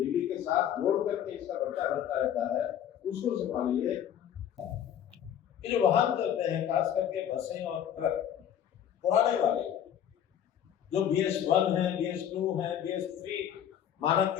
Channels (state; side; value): quieter; right; 9.8 dB